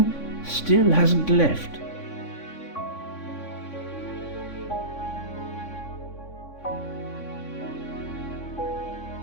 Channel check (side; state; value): right; late; 3.6 ms